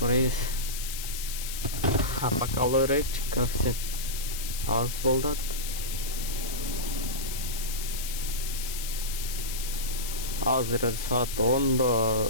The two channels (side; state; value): left; noise; hiss, 7 dB below the sound